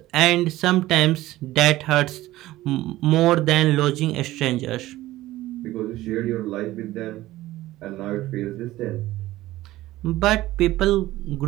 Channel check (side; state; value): left; quieter; 16.4 dB